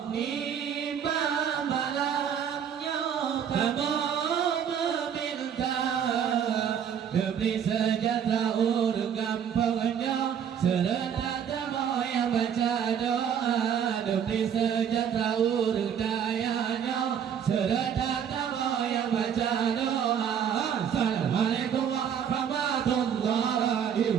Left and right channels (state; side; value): quieter; left; 8.3 dB